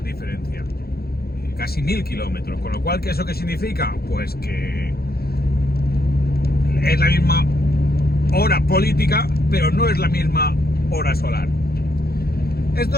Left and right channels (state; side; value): late; right; 0.45 ms